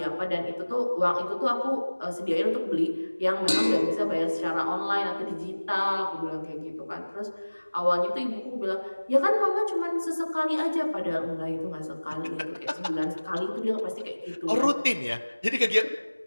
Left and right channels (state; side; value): inverted; both; correlation -1.00